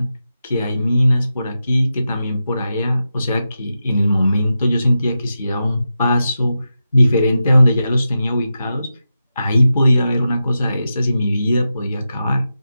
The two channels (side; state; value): both; inverted; correlation -0.90